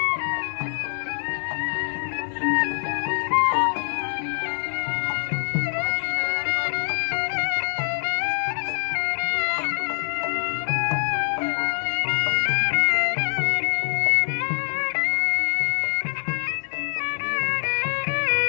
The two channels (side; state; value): right; silent; 62 dB below the other